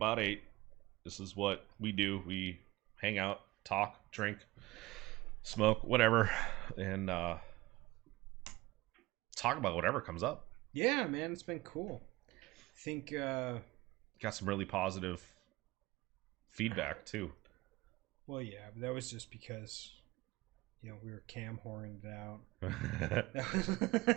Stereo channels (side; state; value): left; quieter; 20.0 dB